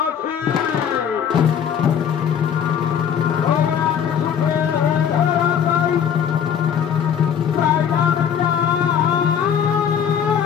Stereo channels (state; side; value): quieter; right; 8.2 dB